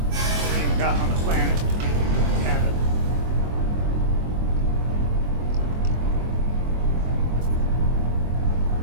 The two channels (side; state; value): left; late; 24 ms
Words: even got on the planet to have it.